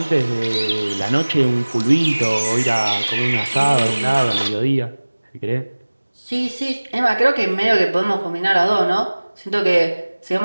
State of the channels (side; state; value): both; inverted; correlation -1.00